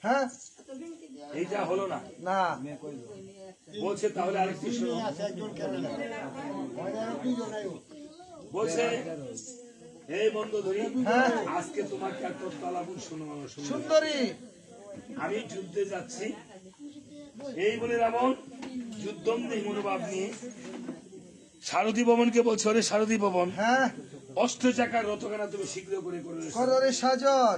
হ্যাঁ এইটা হলো না, না বলছে তাহলে আরেকটি শোনো। বলছে এই বন্ধু ধরি, হ্যাঁ। আজকে তোমাকে একটা তালাবুল শোনো সুন্দরী আমি যুদ্ধে যাচ্ছি। এই বলে রাবণ যুদ্ধমদেহ মনোভাব নিয়ে সারথী ভবনকে বলছে, ওরে সারথী ভবন, হ্যাঁ অষ্ট চাকার রথখানা তুমি শীঘ্র করে করে কররে সাজন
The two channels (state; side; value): identical; both; correlation 1.00